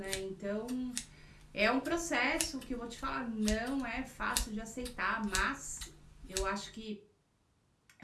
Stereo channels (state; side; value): identical; both; correlation 1.00